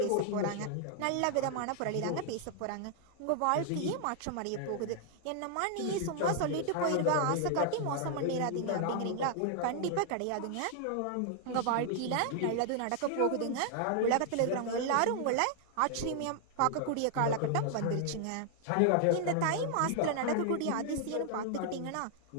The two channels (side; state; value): both; different; correlation 0.00